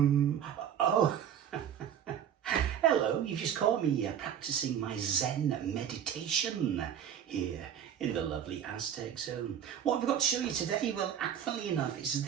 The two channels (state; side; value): quieter; left; 9.1 dB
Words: hello, you've just caught me practicing my Zen meditation here in the lovely Aztec zone. What I've got to show you today, well, funnily enough, it's